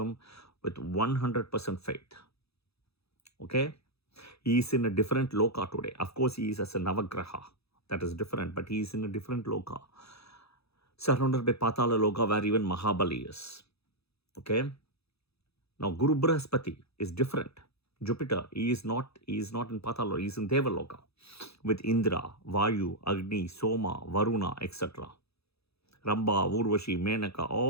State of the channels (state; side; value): late; right; 0.78 ms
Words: with 100% faith, okay, he is in a different loka today. Of course, he is as a Navagraha. That is different, but he is in a different loka. Surrounded by Patala loka where even Mahabali is. Okay. Now, Guru Brihaspati is different. Jupiter, he is not in Patala, he is in Devaloka with Indra, Vayu, Agni, Soma, Varuna, etc. Ramba, Urvashi, Menaka,